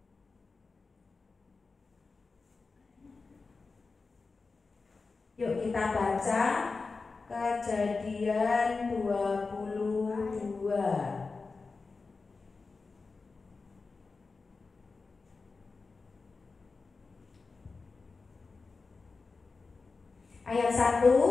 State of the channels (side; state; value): right; quieter; 4.2 dB